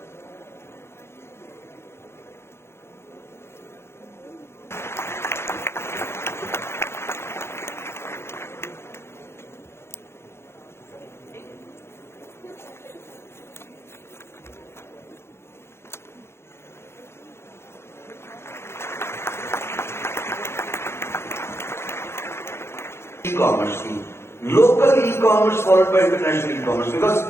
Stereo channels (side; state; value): right; late; 0.12 ms